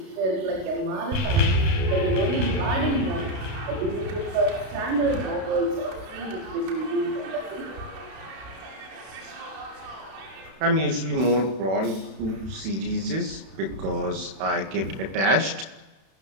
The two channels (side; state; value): left; late; 31 ms